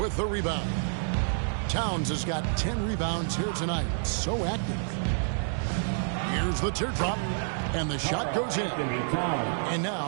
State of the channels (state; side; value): silent; left; digital silence